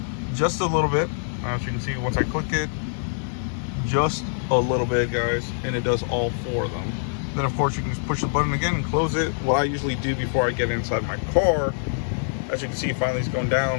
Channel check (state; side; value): silent; right; digital silence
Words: just a little bit. As you can see, once I click it, just a little bit, guys, and it does all four of them. Then of course you can just push the button again and close it. What I usually do before I get inside my car, as you can see, finally it's going